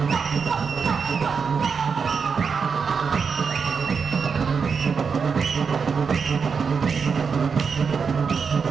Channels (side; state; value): left; quieter; 5.8 dB